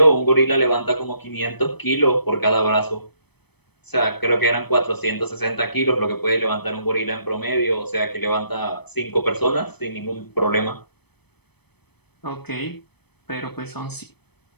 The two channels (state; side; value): late; right; 0.98 ms